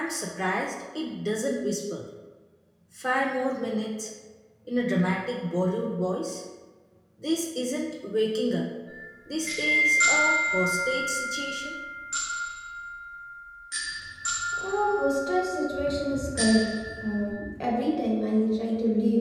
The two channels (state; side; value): identical; both; correlation 1.00